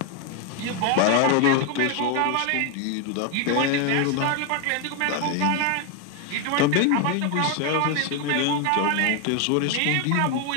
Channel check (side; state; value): both; different; correlation 0.01